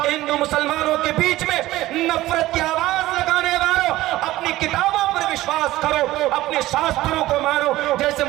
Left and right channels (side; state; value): left; quieter; 16.5 dB